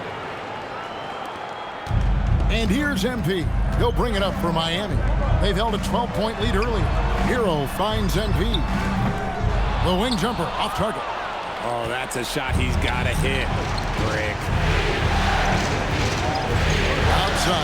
And here's MP. He'll bring it up for Miami. They've held a 12-point lead earlier. Hero finds MP. The wing jumper off target. Oh, that's a shot he's got to hit. Brick.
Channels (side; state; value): both; identical; correlation 1.00